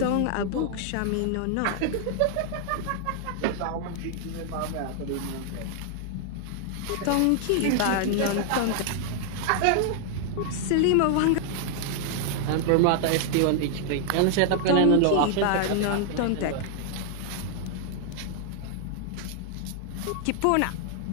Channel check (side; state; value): both; different; correlation 0.00